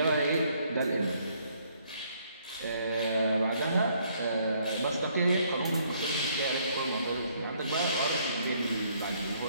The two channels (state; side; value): inverted; both; correlation -0.67